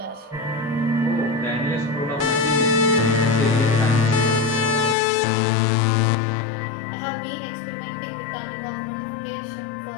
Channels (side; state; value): right; drops out; at 5.0 s